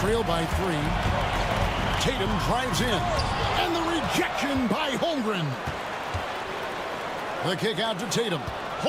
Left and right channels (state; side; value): identical; both; correlation 1.00